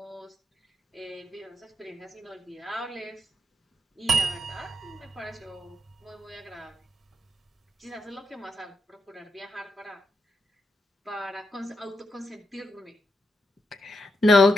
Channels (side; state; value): both; normal; correlation 0.84